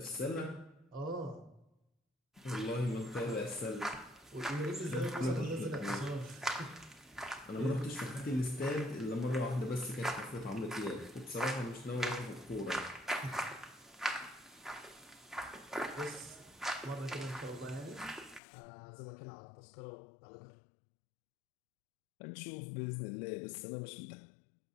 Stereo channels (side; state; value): right; drops out; at 18.4 s